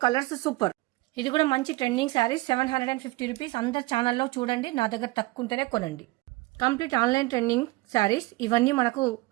colours super. ఇది కూడా మంచి ట్రెండింగ్ శారీ. 750 రూపీస్. అందరు ఛానల్లో చూడండి, నా దగ్గర తక్కువ ఉంటేనే కొనండి. Complete online trending saris. ఇవన్నీ మనకు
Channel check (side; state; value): left; quieter; 21.1 dB